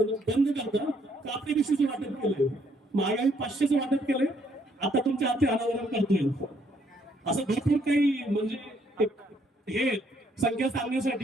करता कापडी पिशवीचे वाटप केले. महागाई 500चं वाटप केलंय. आता तुमच्या हाती अनावरण करतोय. असं भरपूर काही म्हणजे हे संख्या सांगण्यासाठी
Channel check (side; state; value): both; normal; correlation 0.69